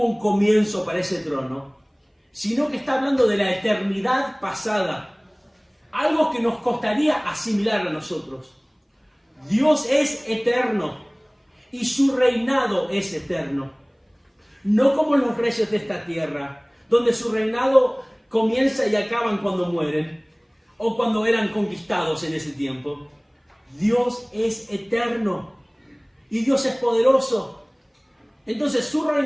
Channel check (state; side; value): identical; both; correlation 1.00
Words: un comienzo para ese trono, sino que está hablando de la eternidad pasada, algo que nos costaría asimilar a nosotros. Dios es eterno y su reinado es eterno, no como los reyes de esta tierra, donde su reinado comienza y acaban cuando mueren, o cuando eran conquistados en ese tiempo. Dios es eterno y Dios es poderoso. Entonces su